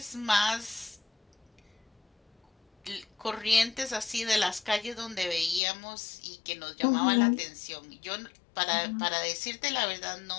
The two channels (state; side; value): drops out; right; at 5.6 s